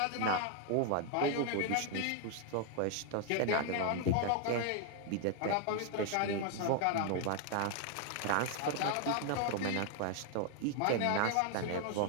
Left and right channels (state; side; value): different; both; correlation 0.00